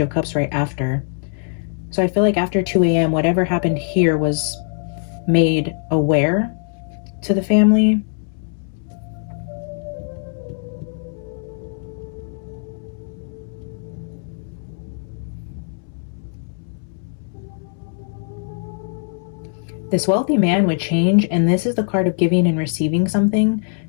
of Cups right after. So I feel like after 2 a.m. whatever happened here was made aware to the family. This wealthy man would change, and this is the card of giving and receiving something.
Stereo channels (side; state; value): right; silent; 65 dB below the other